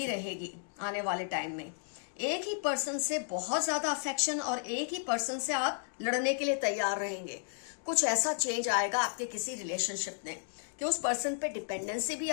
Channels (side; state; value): right; silent; digital silence